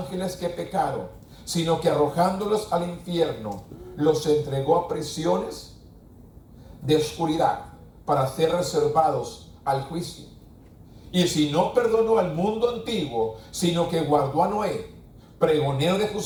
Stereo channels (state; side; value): identical; both; correlation 1.00